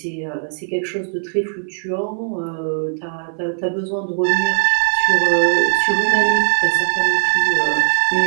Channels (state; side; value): silent; left; 62 dB below the other